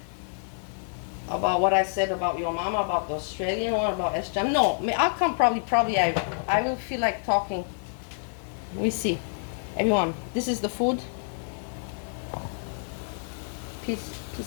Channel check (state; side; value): silent; right; digital silence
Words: About what I said about your mama, about the Australian one, about Sjam. No, I'll come probably I will feel like talking. We see. Everyone, this is the food. Peace,